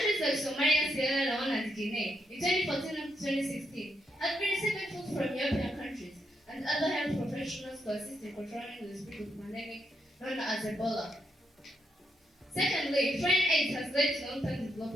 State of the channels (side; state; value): both; normal; correlation 0.80